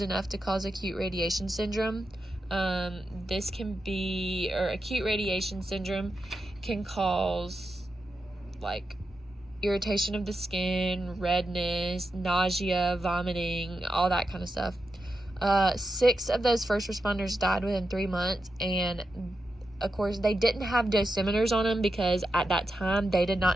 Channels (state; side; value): normal; both; correlation 0.88